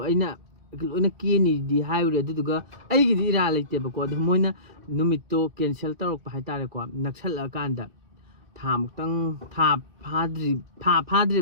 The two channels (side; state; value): left; late; 3.0 ms